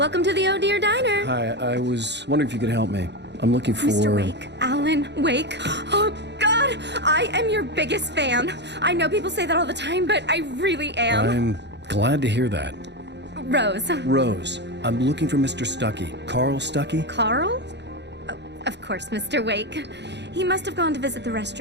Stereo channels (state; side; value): late; left; 0.50 ms